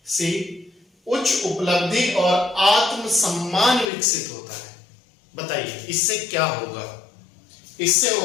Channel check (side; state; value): right; drops out; at 3.9 s